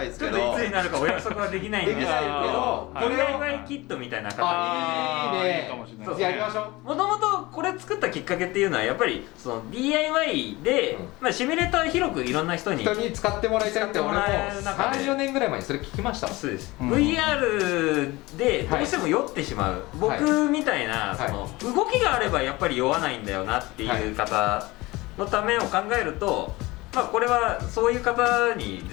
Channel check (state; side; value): quieter; right; 21.2 dB